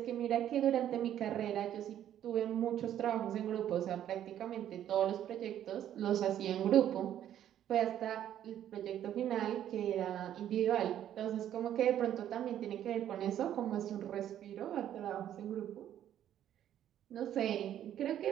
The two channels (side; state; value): left; quieter; 10.9 dB